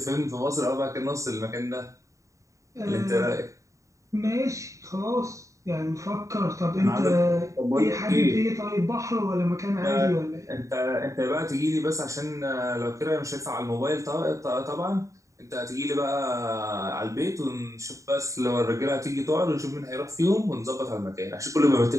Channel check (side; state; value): left; late; 0.15 ms